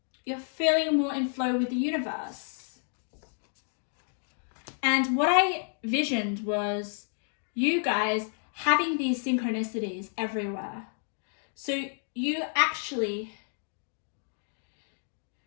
feeling more in flow with the universe. And what I visioned was you guys having these synchronicities everywhere. So you actually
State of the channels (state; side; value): silent; right; 57 dB below the other